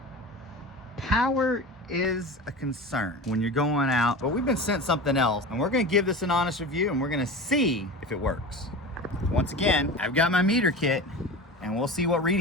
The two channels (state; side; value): normal; both; correlation 0.31